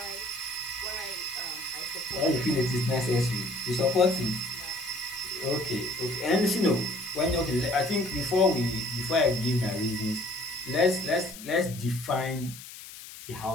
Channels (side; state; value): left; noise; hiss, 14 dB below the sound